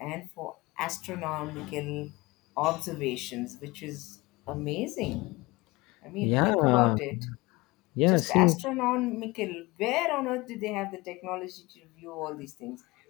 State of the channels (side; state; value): right; quieter; 22.5 dB